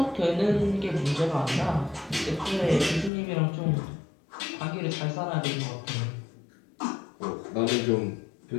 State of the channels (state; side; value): drops out; right; at 3.1 s